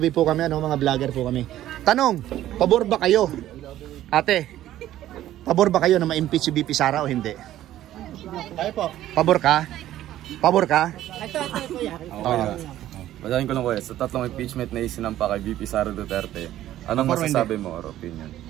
po kami, mga vlogger po kami. Tanong, pabor ba kayo? Ate, pabor ba kayo na ma-impeach si VP Sara o hindi? Kayo po. Pabor ka? Ito kuya. Basahin ko lang kuya, sa tatlong impeachment na isinampa kay VP Sara Duterte, anong masasabi mo or opinion?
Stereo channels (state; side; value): quieter; left; 13.3 dB